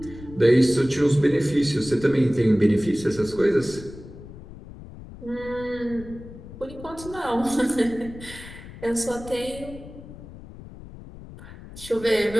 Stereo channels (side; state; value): left; noise; rumble, 16 dB below the sound